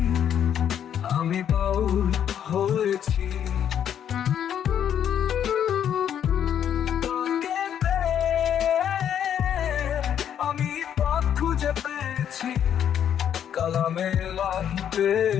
আমি বাউল হয়েছি। তাকে পেয়ে আমি পথ খুঁজে পেয়েছি, কালামে লাহি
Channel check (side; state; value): right; quieter; 9.3 dB